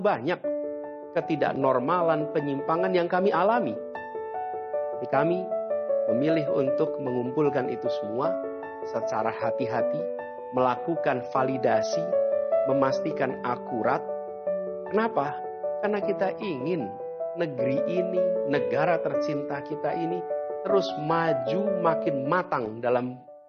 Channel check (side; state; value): both; identical; correlation 1.00